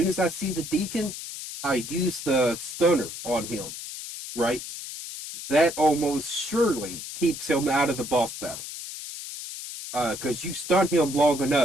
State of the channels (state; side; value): noise; left; hiss, 9 dB below the sound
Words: as I see the deacon, I use the stunner on him. Right? That almost surely keeps him out of the boss battle. Because you stun him long